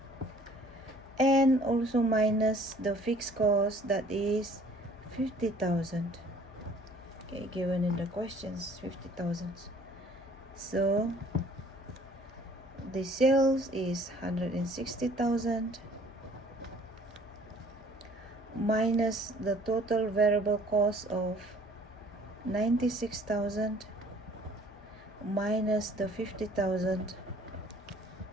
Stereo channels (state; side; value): normal; both; correlation 0.55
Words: and also minus the fixed cost, that is 50,000. Okay, given in the questions, 50,000. So the sales is 160,000 minus the total variable cost of 96,000 minus the 50,000.